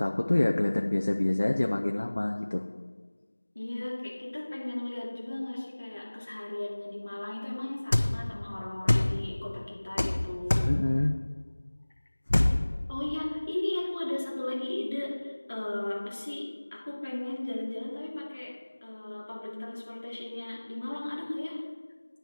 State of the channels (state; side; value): inverted; both; correlation -1.00